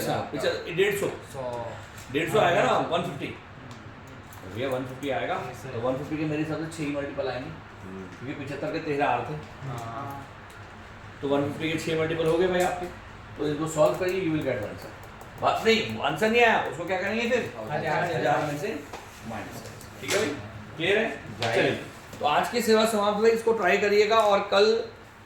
150 150 आएगा ना 150, भैया 150 आएगा, तो 150 के मेरे हिसाब से 6 मल्टीपल आएंगे, क्योंकि 75 के 13 आ रहे थे, तो 150 के 6 मल्टीपल हो गए भाई आपके, तो इसको सॉल्व करिए, यू विल गेट आंसर। बात नहीं, आंसर नहीं आया, उसको क्या करेंगे फिर 1000 में से माइनस, ठीक है भाई, क्लियर है? चलिए, तो आज की सेवा समाप्त हुई, इसको ट्राई करिएगा और कल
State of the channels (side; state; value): both; identical; correlation 1.00